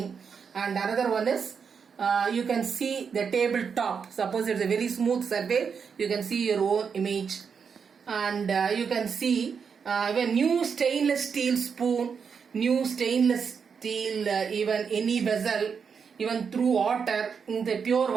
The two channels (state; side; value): quieter; left; 6.3 dB